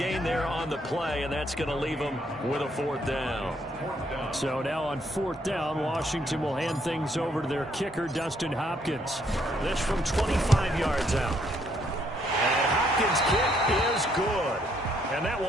there on the play, and that's going to leave him with a 4th down. So now on 4th down, Washington will hand things over to their kicker, Dustin Hopkins. This from 25 yards out. And Hopkins' kick is good. And that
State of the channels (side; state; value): both; normal; correlation 0.70